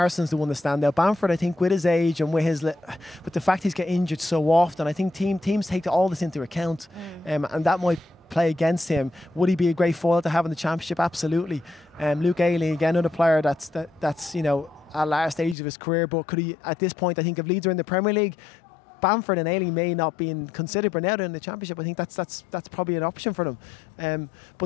the one to stand out. Bamford, I think, with his age and with the fact he's getting injured so often, I think teams take all this into account, and that might play against him. Would he be a great foil to have in the Championship? Absolutely. Luke Ayling, again, another player that's at last stage of his career, but could he, at this point, I think if Leeds are in the Premier League, Bamford and Ayling may not be considered, but now they're in the Championship. I think that's probably an option for them.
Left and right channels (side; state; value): right; drops out; at 15.6 s